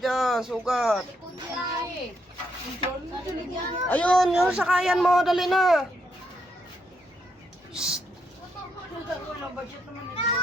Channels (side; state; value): both; normal; correlation 0.77